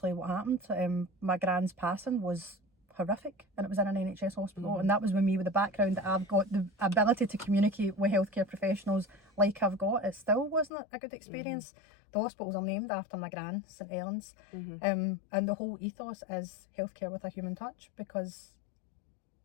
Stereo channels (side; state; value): right; drops out; at 10.7 s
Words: what happened. My gran's passing was horrific, and it was in an NHS hospital, and that was with me, with the background that I've got, the ability to communicate with healthcare professionals like I've got. It still wasn't a good experience. The hospitals are named after my gran, St Helens, and the whole ethos is healthcare with a human touch, because